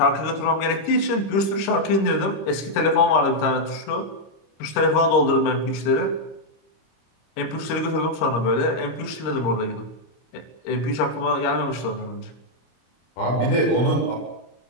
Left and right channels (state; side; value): late; right; 26 ms